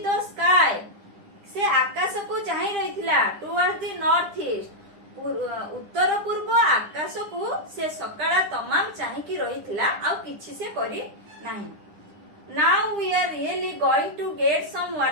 the sky ସେ ଆକାଶକୁ ଚାହିଁ ରହିଥିଲା। towards the north east ଉତ୍ତର ପୂର୍ବ ଆକାଶକୁ ସେ ସକାଳ ତମାମ ଚାହିଁକି ରହିଥିଲା, ଆଉ କିଛି ସେ କରି ନାହିଁ। now we are really going to get some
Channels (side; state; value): left; late; 9.9 ms